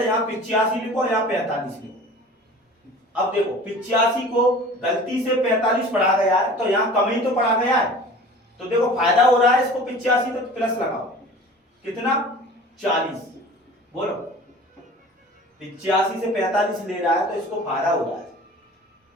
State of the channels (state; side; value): normal; both; correlation 0.42